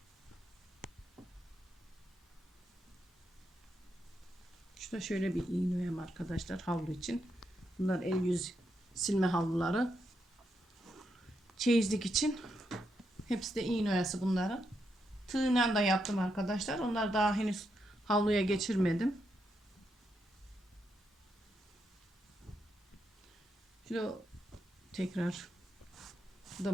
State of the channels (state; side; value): normal; both; correlation 0.82